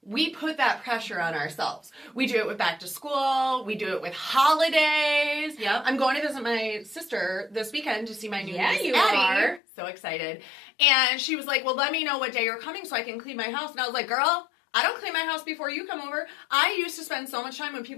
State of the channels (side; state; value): right; drops out; at 9.6 s